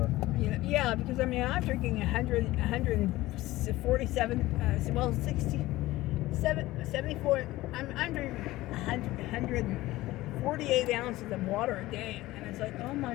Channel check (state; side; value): quieter; right; 17.6 dB